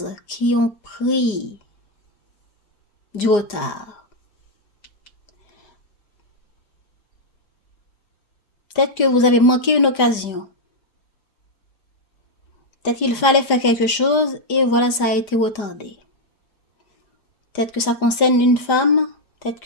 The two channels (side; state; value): right; late; 4.9 ms